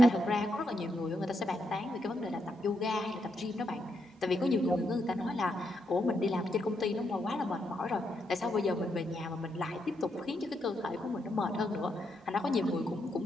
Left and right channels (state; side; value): normal; both; correlation 0.80